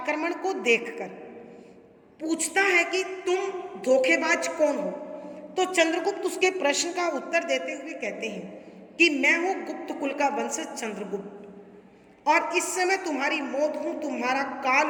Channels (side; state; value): both; identical; correlation 1.00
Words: को देखकर पूछता है कि तुम धोखेबाज कौन हो, तो चंद्रगुप्त उसके प्रश्न का उत्तर देते हुए कहते हैं कि मैं हूं गुप्त कुल का वंशज चंद्रगुप्त और इस समय तुम्हारी मौत हूं, तुम्हारा काल